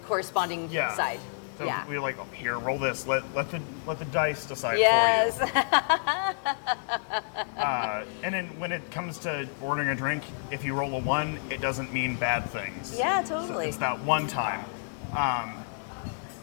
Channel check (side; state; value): right; silent; digital silence